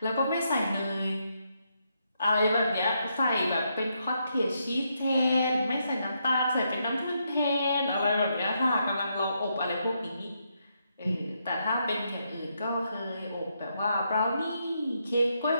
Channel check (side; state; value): both; inverted; correlation -0.79